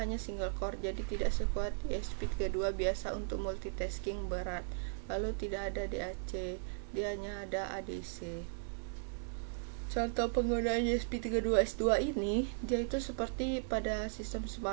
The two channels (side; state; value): left; silent; 53 dB below the other